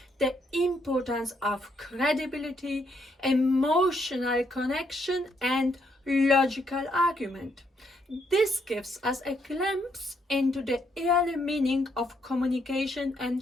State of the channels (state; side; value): normal; both; correlation 0.74